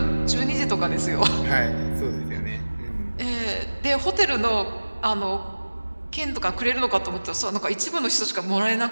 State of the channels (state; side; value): inverted; both; correlation -1.00